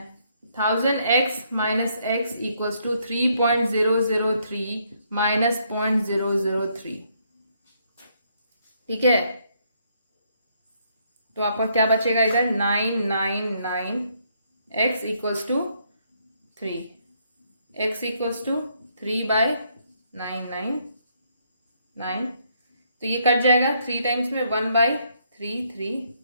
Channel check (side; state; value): both; inverted; correlation -0.72